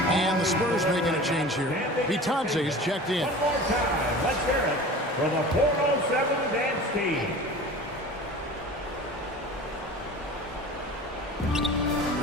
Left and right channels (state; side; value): normal; both; correlation 0.38